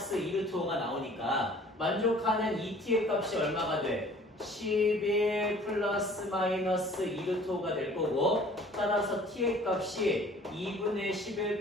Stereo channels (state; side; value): normal; both; correlation 0.51